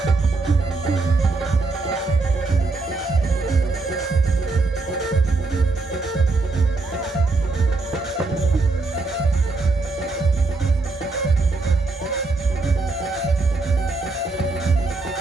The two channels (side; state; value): left; quieter; 3.6 dB